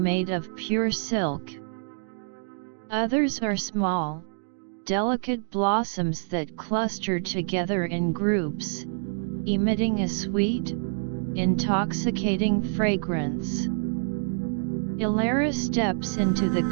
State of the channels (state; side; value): silent; left; digital silence